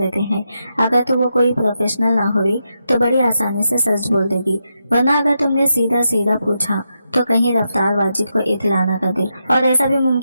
हैं। अगर तो वो कोई प्रोफेशनल ना हुई तो बड़ी आसानी से सच बोल देगी, वरना अगर तुमने सीधा सीधा पूछा तो कहीं रफ्तार वाजिद को इत्तला न कर दे, और ऐसा भी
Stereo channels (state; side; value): inverted; both; correlation -0.85